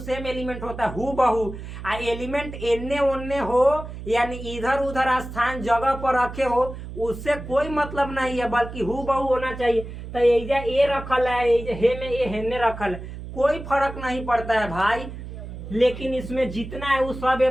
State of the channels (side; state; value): right; noise; hum, 10 dB below the sound